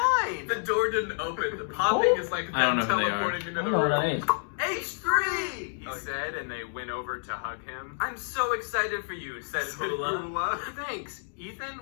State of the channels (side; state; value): right; silent; digital silence